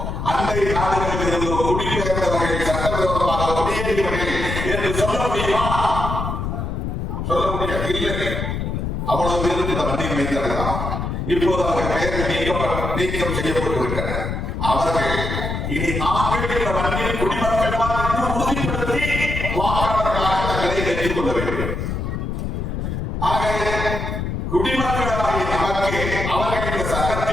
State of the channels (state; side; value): noise; left; rumble, 3 dB below the sound